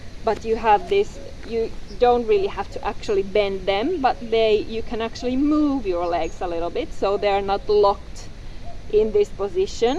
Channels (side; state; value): both; identical; correlation 1.00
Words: but you have this, you don't really have to actually bend them, but you can actually move your legs a little bit so they're not locked in this position.